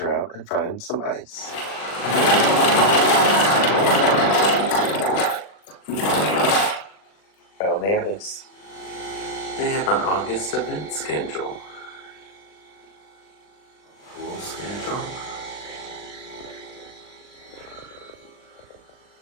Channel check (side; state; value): right; late; 39 ms